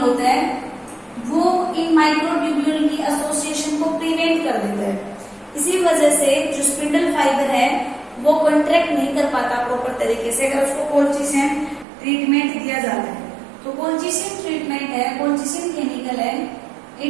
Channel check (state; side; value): drops out; left; at 11.9 s